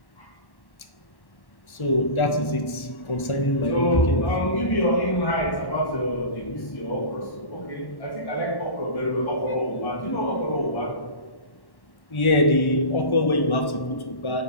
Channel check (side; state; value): right; late; 1.1 ms